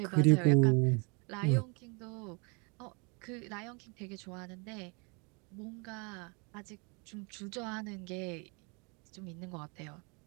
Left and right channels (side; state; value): left; quieter; 32.5 dB